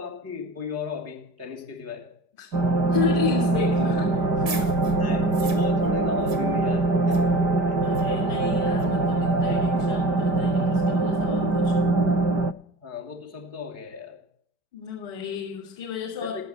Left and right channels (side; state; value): left; late; 5.2 ms